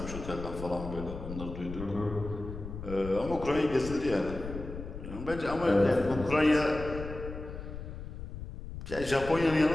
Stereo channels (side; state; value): left; noise; rumble, 9 dB below the sound